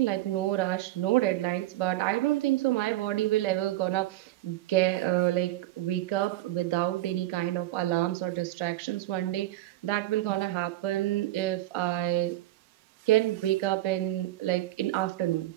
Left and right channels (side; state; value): left; quieter; 15.6 dB